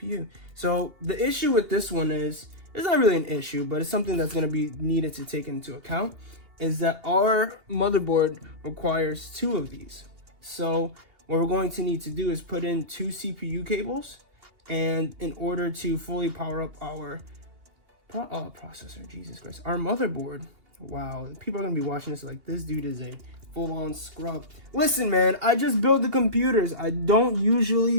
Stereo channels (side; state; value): left; late; 2.8 ms